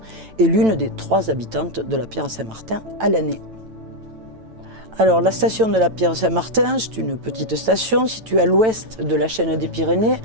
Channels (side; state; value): left; late; 9.0 ms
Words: et l'une des 3 habitantes de la Pierre-Saint-Martin à l'année. Alors la station de la Pierre-Saint-Martin, c'est une petite station située à l'ouest de la chaîne des Pyrénées,